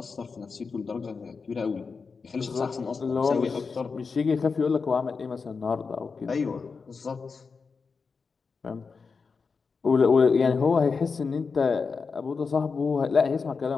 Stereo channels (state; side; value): quieter; right; 5.0 dB